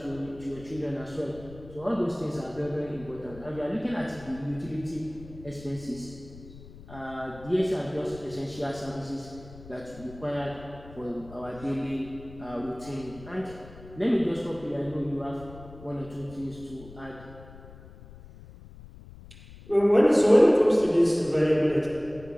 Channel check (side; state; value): left; noise; rumble, 18 dB below the sound